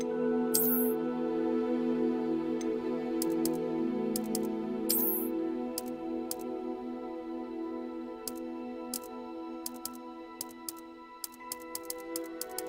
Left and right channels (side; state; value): both; identical; correlation 1.00